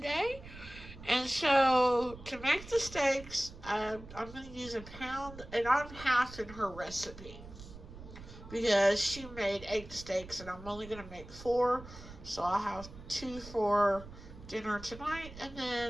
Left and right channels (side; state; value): right; noise; rumble, 15 dB below the sound